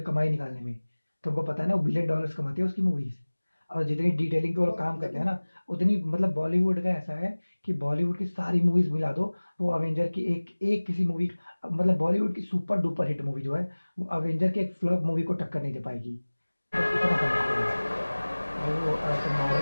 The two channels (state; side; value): inverted; both; correlation -1.00